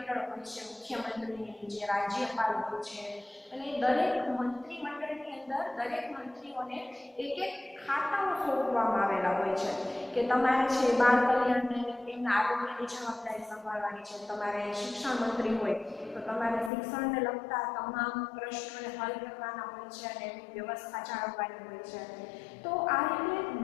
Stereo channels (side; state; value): right; drops out; at 16.7 s